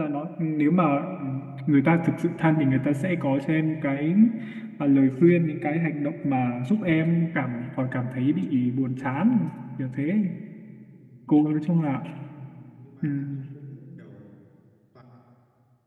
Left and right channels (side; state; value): both; identical; correlation 1.00